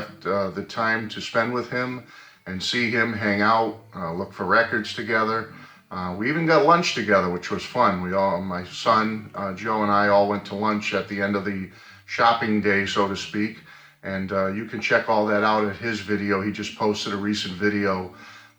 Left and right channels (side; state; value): both; identical; correlation 1.00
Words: the time to spend with him and see him, hang out, look for records together. We even got lunch together, which was fun. My son, Joe, and I all went to lunch at the end of the shopping day, so to speak. And you can check all that out at his video. He just posted a recent video